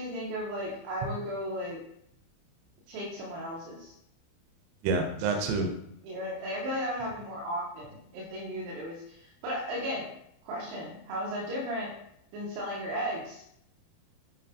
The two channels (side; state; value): left; late; 30 ms